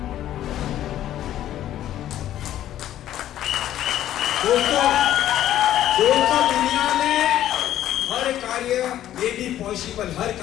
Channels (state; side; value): quieter; right; 12.3 dB